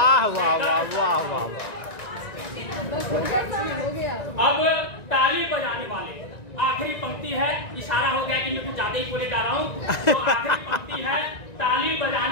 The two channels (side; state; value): right; late; 1.9 ms